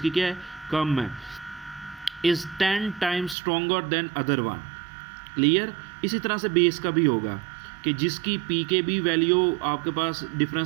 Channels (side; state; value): left; drops out; at 3.4 s